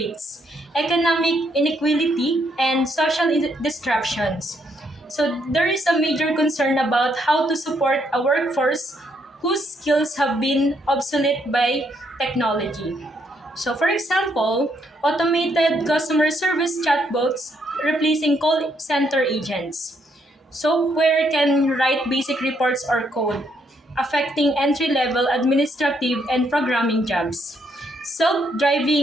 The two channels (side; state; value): both; normal; correlation 0.73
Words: economic inequality, and social disruptions. So there is a major concern about how to support a workforce whose skills have been obsolete by technology. So for example, automated customer service chatbots replacing call center agents. Software can write basic reports or code, affecting entry level administrative and programming jobs. Self